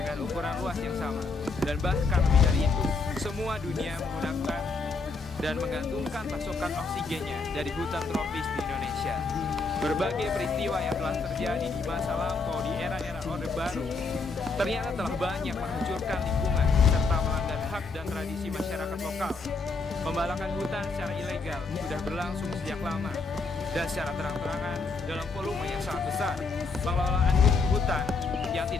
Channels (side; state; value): right; quieter; 4.1 dB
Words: ukuran luas yang sama. Dan bahkan lebih dari itu, semua dunia menggunakan dan menggantungkan pasokan oksigennya dari hutan tropis di Indonesia. Berbagai peristiwa yang telah terjadi di masa lampau di era-era Orde Baru ternyata telah banyak menghancurkan lingkungan serta melanggar hak dan tradisi masyarakat lokal. Pembalakan hutan secara ilegal sudah berlangsung sejak lama dan secara terang-terangan dalam volume yang sangat besar. Pengelolaan hutan yang